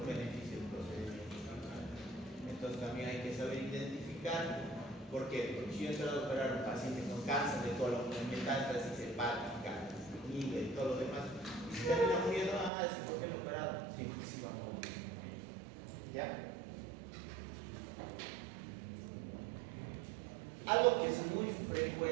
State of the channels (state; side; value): drops out; left; at 12.7 s